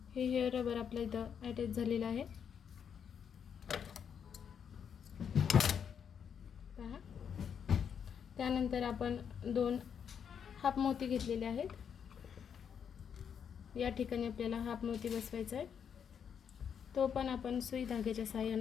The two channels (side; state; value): right; quieter; 7.6 dB